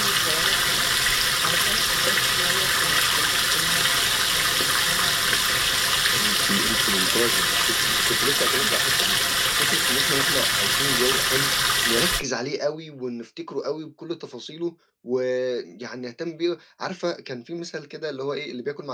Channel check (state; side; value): identical; both; correlation 1.00